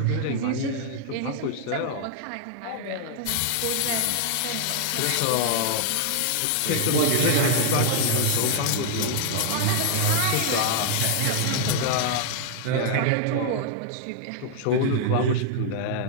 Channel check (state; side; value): different; both; correlation 0.00